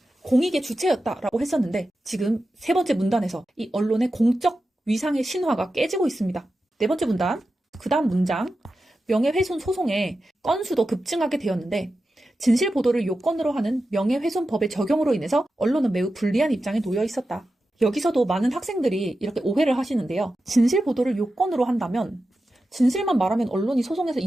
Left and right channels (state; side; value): normal; both; correlation 0.92